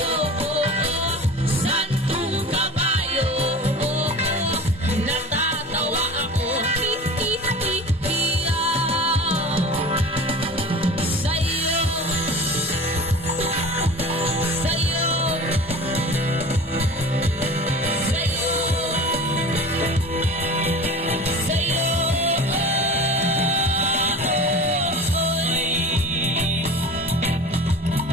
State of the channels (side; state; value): both; normal; correlation 0.37